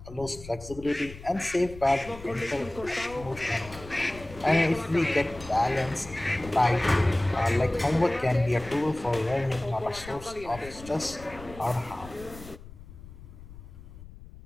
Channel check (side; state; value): left; noise; rumble, 16 dB below the sound